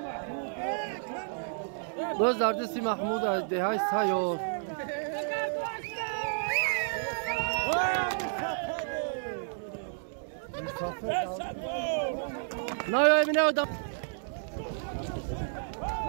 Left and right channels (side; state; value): left; silent; digital silence